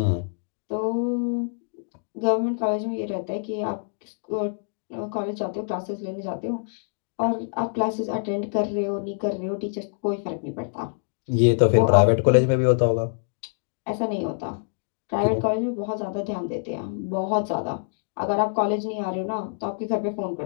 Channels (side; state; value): right; silent; digital silence